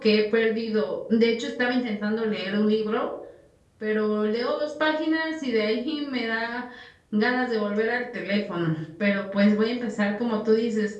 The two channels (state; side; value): identical; both; correlation 1.00